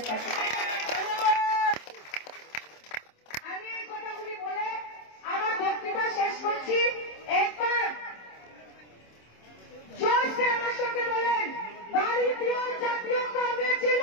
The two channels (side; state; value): right; late; 27 ms